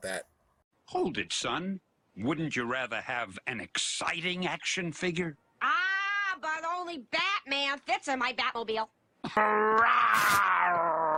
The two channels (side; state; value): both; identical; correlation 1.00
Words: that. Hold it, son. Wouldn't you rather have an exciting action figure? Ah, but only Batman fits in my Batmobile.